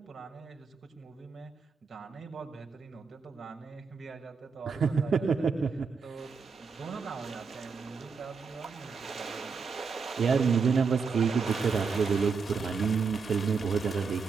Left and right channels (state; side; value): quieter; left; 5.2 dB